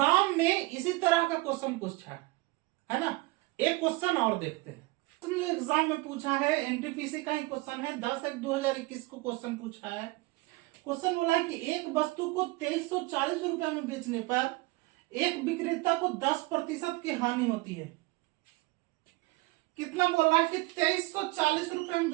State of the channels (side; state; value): left; quieter; 22.7 dB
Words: में इसी तरह का क्वेश्चन पूछा है ना। एक क्वेश्चन और देखते हैं, तुमने एग्जाम में पूछा है, एनटीपीसी का ही क्वेश्चन है, 10/1/2021 को क्वेश्चन पूछा है। क्वेश्चन बोला है कि एक वस्तु को 2340 रुपए में बेचने पर एक विक्रेता को 10% की हानि होती है। कितना बोल रहा है कि 2340 रुपए में